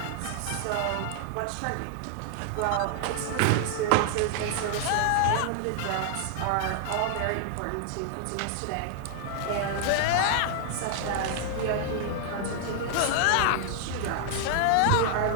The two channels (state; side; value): different; both; correlation 0.00